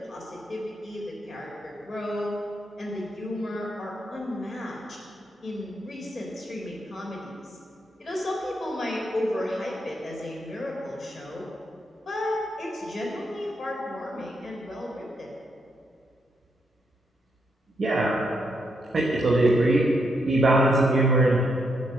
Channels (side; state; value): both; normal; correlation 0.78